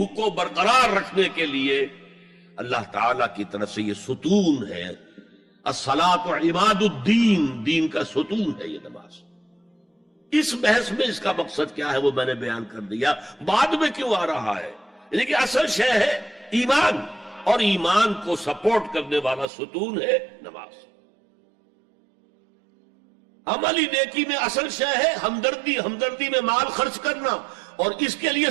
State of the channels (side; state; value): left; drops out; at 19.5 s